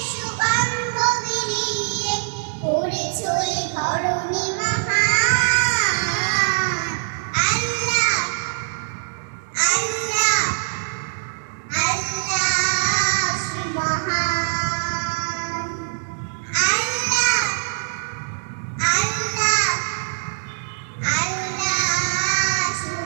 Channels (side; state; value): left; silent; 64 dB below the other